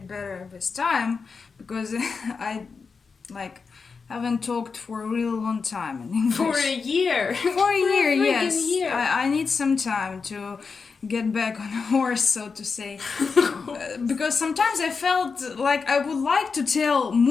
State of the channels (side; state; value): right; quieter; 5.0 dB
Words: better with time, because I like haven't talked for a really long time in English. For a year. For a year, freaking yes. year. I need some time to get back on a horse, so to say. Because sometimes I felt like I would like to tell